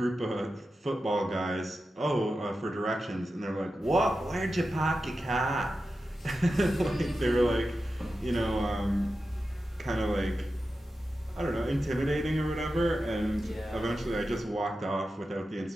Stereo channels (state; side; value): normal; both; correlation 0.91